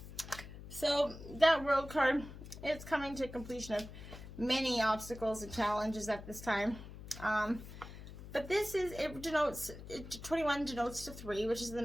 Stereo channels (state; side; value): noise; left; hum, 13 dB below the sound